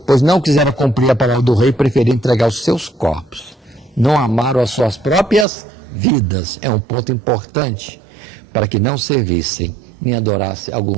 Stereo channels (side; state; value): left; drops out; at 5.5 s